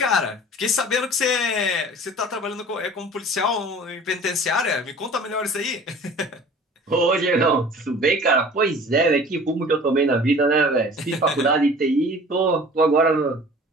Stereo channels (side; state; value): both; normal; correlation 0.45